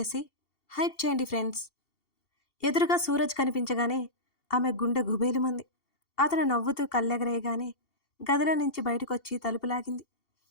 హైప్ చేయండి ఫ్రెండ్స్. ఎదురుగా సూరజ్ కనిపించగానే ఆమె గుండె గుబేలుమంది. అతను నవ్వుతూ కళ్ళెగరేయగానే గదిలో నుంచి బయటకు వచ్చి తలుపు లాగింది.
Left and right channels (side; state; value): right; late; 2.7 ms